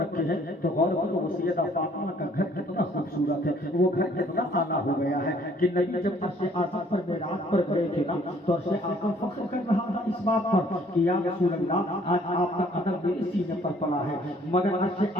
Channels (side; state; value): both; normal; correlation 0.60